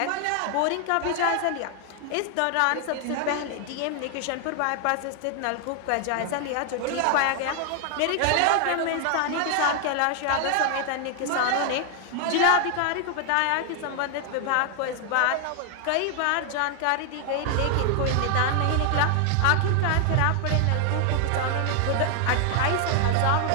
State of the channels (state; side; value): different; both; correlation 0.00